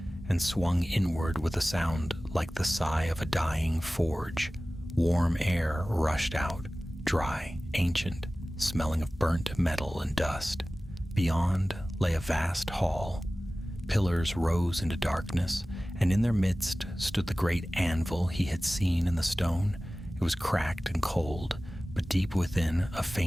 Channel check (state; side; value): normal; both; correlation 0.97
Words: and swung inward with a sound like the sigh of a dying forge. Warm air rushed out, dry, ancient, smelling of burnt metal and dust. Beyond lay a vast hall. Pillars rose into darkness, and in their midst stood the great anvil he had seen in the stone. It was cracked and cold, but deep within a